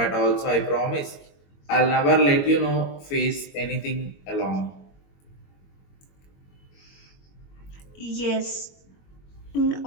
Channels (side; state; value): right; late; 21 ms